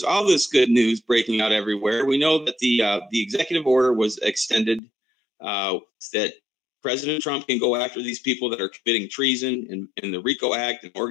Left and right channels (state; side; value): drops out; right; at 4.8 s